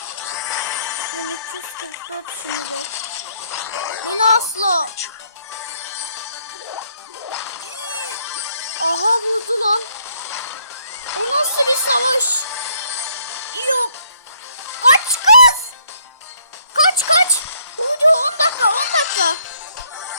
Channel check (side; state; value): both; inverted; correlation -0.67